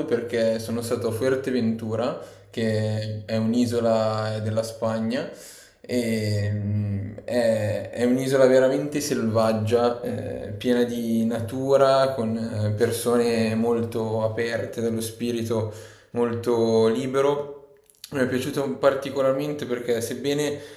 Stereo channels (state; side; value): identical; both; correlation 1.00